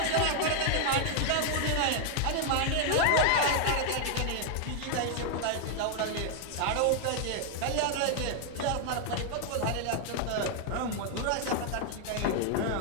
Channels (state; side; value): different; both; correlation 0.00